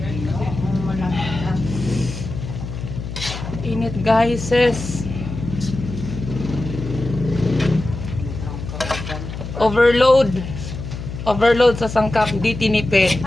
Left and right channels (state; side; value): noise; left; hum, 8 dB below the sound